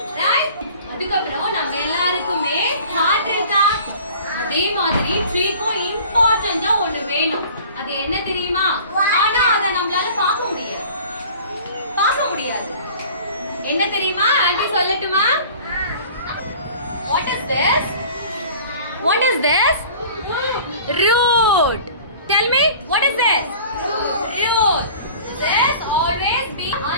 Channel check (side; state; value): both; inverted; correlation -0.45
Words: Right? அதுக்கப்புறம் நம்ம எல்லாருக்குமே heart இருக்கா? அதே மாதிரி ட்ரீக்கும் இம்பார்ட்டன்ட்டா ஒன்னு வேணும். அது என்ன தெரியுமா? ஆனா அத நம்மளால பார்க்க முடியாது. என்ன தெரியுமா? ஆன்ட்டி சொல்லட்டுமா? What is this? What is this? Root. Tell me, what is this? Root. This always be on